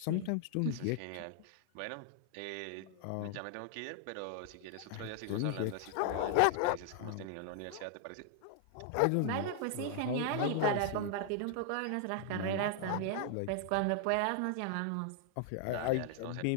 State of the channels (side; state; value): both; different; correlation 0.00